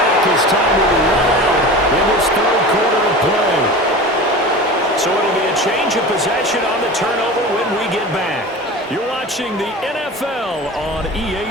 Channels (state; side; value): normal; both; correlation 0.33